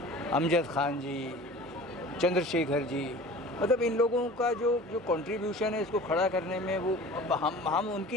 अमजद खान जी, चंद्रशेखर जी, मतलब इन लोगों का जो कंट्रीब्यूशन है इसको खड़ा करने में, वो हम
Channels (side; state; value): both; normal; correlation 0.41